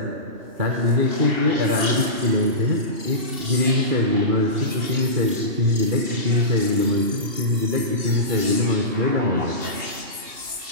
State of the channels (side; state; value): left; late; 2.7 ms